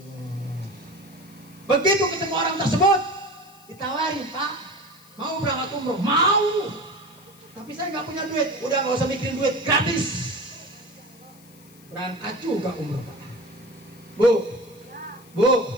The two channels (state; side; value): noise; left; hiss, 25 dB below the sound